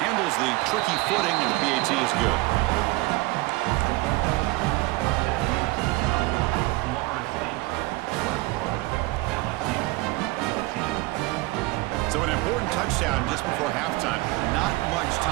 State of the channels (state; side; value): quieter; left; 21.9 dB